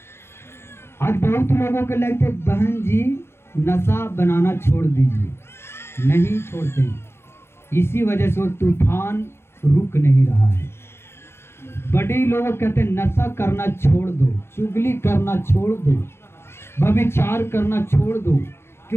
आज बहुत लोगों को लगता है बहन जी नशा बनाना छोड़ दीजिए, नहीं छोड़ते, इसी वजह से वो तूफान रुक नहीं रहा है। बड़े लोग कहते हैं नशा करना छोड़ दो, चुगली करना छोड़ दो, व्यभिचार करना छोड़ दो,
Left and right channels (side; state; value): right; late; 0.12 ms